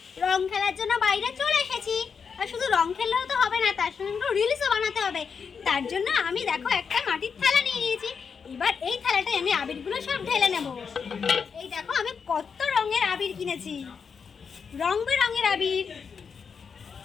রং খেলার জন্য বাইরে চলে এসেছি। আর শুধু রং খেললেও তো হবে না, তার সঙ্গে একটু রিলসও বানাতে হবে। তার জন্য আমি দেখো একটা মাটির থালা নিয়ে নিয়েছি। এবার এই থালাটায় আমি আবিরগুলো সব ঢেলে নেব। এই দেখো আমি কত রঙের আবির কিনেছি, রং বেরঙের আবির।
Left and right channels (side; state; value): right; quieter; 6.1 dB